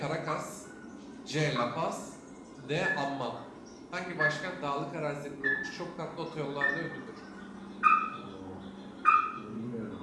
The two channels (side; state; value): both; identical; correlation 1.00